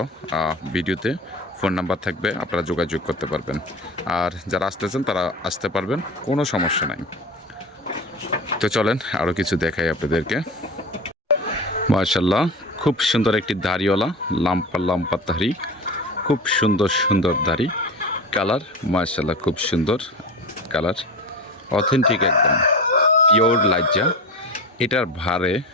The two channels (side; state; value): both; normal; correlation 0.28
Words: ভিডিওতে ফোন নাম্বার থাকবে, আপনারা যোগাযোগ করতে পারবেন। আর যারা আসতেছেন তারা আসতে পারবেন, কোনো সমস্যা নাই। তো চলেন আরও কিছু দেখাই আপনাদেরকে। মাশাআল্লাহ খুব সুন্দর একটি দাড়িওয়ালা লাম্পা দাড়ি, খুব সুন্দর দাড়ি, কালার মাশাআল্লাহ খুব সুন্দর কালার, অথেন্টিক একদম পিওর লাইজা। এটার ভারে